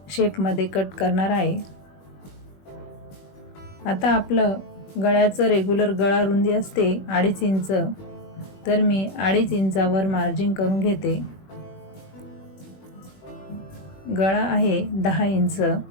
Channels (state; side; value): late; right; 21 ms